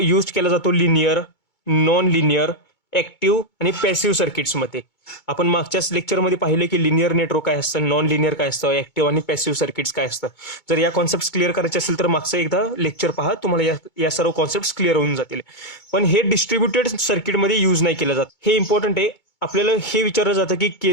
केला जातो लिनियर, नॉन लिनियर, ऍक्टिव्ह आणि पॅसिव्ह सर्किट्समध्ये. आपण मागच्याच लेक्चरमध्ये पाहिले की लिनियर नेटवर्क काय असतं, नॉन लिनियर काय असतं, ऍक्टिव्ह आणि पॅसिव्ह सर्किट्स काय असतं. जर या कॉन्सेप्ट क्लिअर करायचे असेल तर मागचं एकदा लेक्चर पहा, तुम्हाला या सर्व कॉन्सेप्ट क्लिअर होऊन जातील. पण हे डिस्ट्रीब्युटेड सर्किटमध्ये यूज नाही केलं जात. हे इम्पॉर्टंट आहे. आपल्याला हे विचारलं जातं की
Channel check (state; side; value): late; right; 2.2 ms